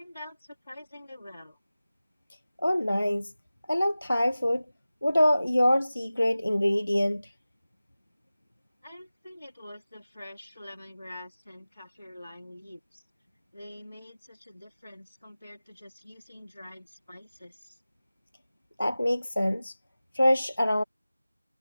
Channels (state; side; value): inverted; both; correlation -0.97